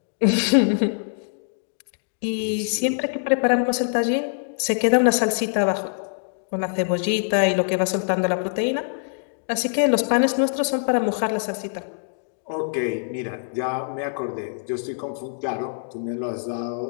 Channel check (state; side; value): silent; right; digital silence